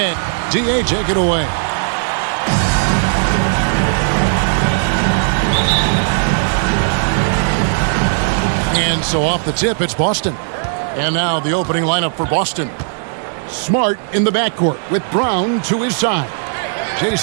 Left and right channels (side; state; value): left; silent; digital silence